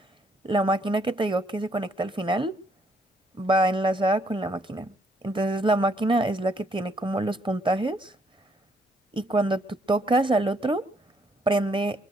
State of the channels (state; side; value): normal; both; correlation 0.70